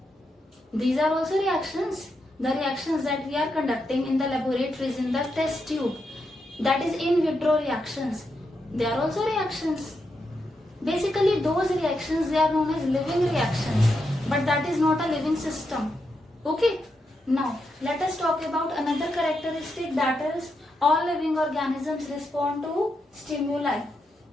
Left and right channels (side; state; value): both; normal; correlation 0.84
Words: These are also reactions. The reactions that we are conducting in the laboratories, in the test tube, that is in vitro reactions. They are also reactions. Basically, those reactions, they are known as living reactions, but that is not a living system. Okay? Now, let us talk about another characteristic, that is all living organisms respond to stimuli.